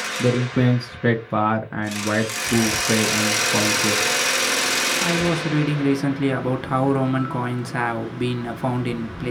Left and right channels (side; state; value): both; identical; correlation 1.00